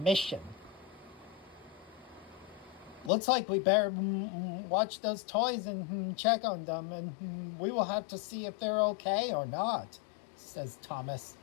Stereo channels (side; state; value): right; drops out; at 3.1 s